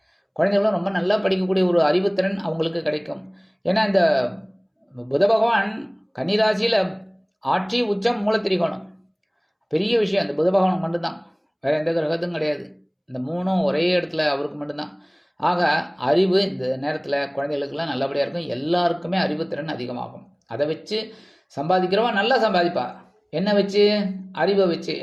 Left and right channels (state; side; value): identical; both; correlation 1.00